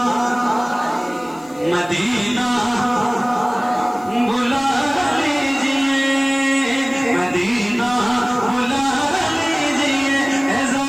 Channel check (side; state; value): left; noise; hiss, 26 dB below the sound